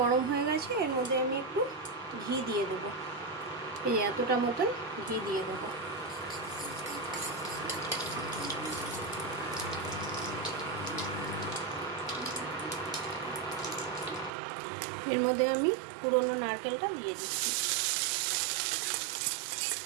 হয়ে গেছে, এর মধ্যে আমি একটু ঘি দিয়ে দেবো। এই এতটা মতন ঘি দিয়ে দেবো। এর মধ্যে আমি পুরনো নারকেলটা দিয়ে দিচ্ছি।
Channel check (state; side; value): drops out; left; at 14.3 s